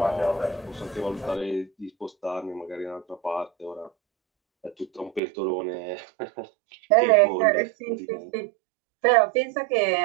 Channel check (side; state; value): left; drops out; at 5.2 s